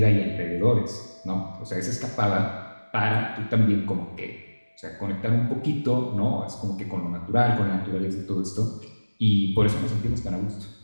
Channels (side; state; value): both; inverted; correlation -1.00